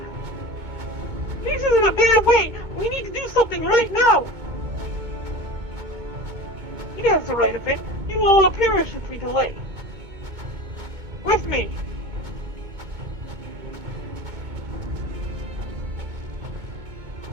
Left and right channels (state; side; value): late; left; 2.2 ms